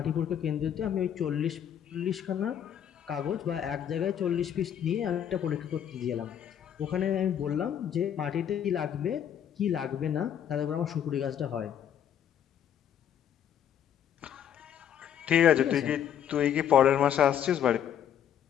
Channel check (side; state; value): right; quieter; 9.5 dB